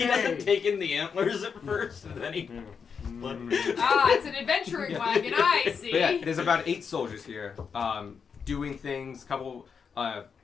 doesn't take in the antlers at first, and then he. It's an adventuring wagon. I see. But yeah, there's about 8 soldiers here, doing things. Couple,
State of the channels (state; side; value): quieter; right; 6.2 dB